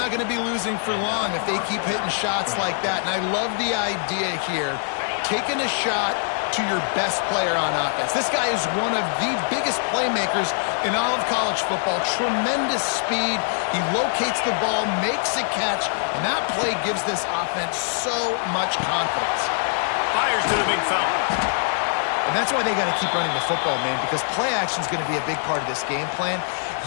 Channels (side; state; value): right; silent; digital silence